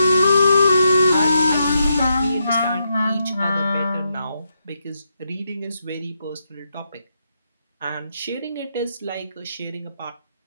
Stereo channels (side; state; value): both; inverted; correlation -0.82